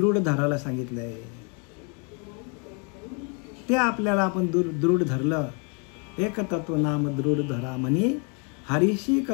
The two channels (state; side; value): quieter; right; 36.2 dB